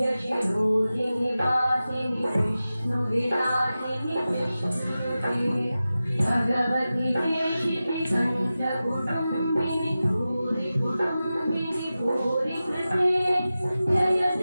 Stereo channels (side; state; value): both; inverted; correlation -0.94